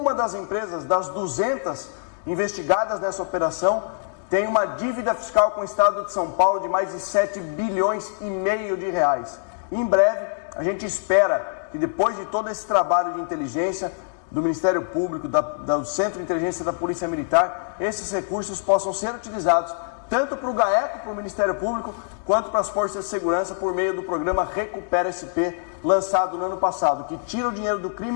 das empresas das 200 investigadas nessa operação tem uma dívida fiscal com o Estado de São Paulo de mais de 7,5 bilhões de reais. E em breve, a gente espera que depois de todo esse trabalho de inteligência do Ministério Público, do Centro de Inteligência da Polícia Militar, esses recursos possam ser utilizados tanto para o GAECO, para o Ministério Público, quanto para as Forças de Segurança por meio do programa Recupera SP, lançado no ano passado, que tira o dinheiro do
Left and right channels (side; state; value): right; silent; digital silence